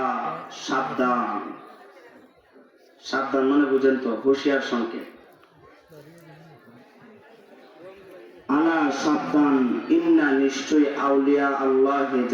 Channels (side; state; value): both; identical; correlation 1.00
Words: সাবধান সাবধান মানে বুঝেন তো হুঁশিয়ার সংকেত আলা সাবধান ইন্না নিশ্চয়ই আউলিয়া আল্লাহ